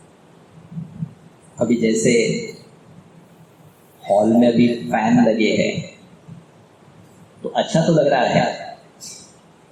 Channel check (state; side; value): identical; both; correlation 1.00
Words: अभी जैसे हॉल में अभी फैन लगे हैं तो अच्छा तो लग रहा है,